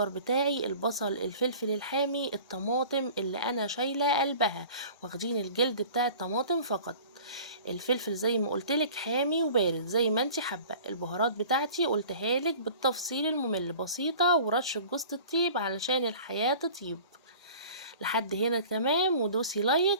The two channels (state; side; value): inverted; both; correlation -0.44